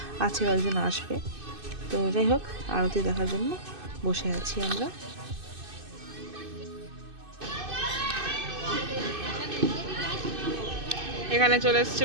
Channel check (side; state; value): left; late; 2.6 ms